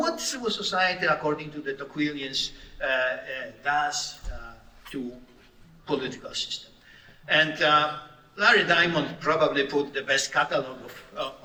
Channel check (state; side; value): identical; both; correlation 1.00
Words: civil society, according to the Tocquevillians, does to political system? And Larry Diamond probably put the best catalog